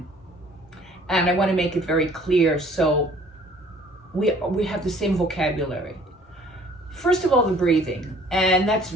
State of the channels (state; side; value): normal; both; correlation 0.54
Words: and I want to make it very clear so we have the same vocabulary. First of all, the breathing, and that's